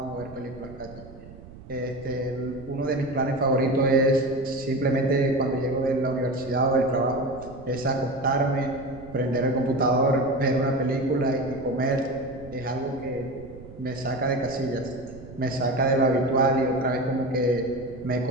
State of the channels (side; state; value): right; noise; rumble, 17 dB below the sound